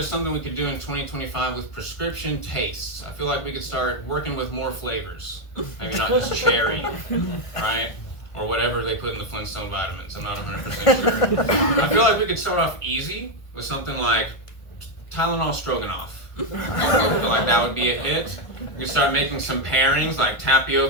something we could do in 2025 with prescription tastes. I feel like we could start working with more flavors, maybe not just cherry, right? Or whatever they put in the Flintstone vitamins. I'm not 100% sure. I feel like we could start off easy with something like Tylenol Stroganoff. I feel like that would be a hit. We could start making some pairings like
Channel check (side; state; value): right; late; 1.5 ms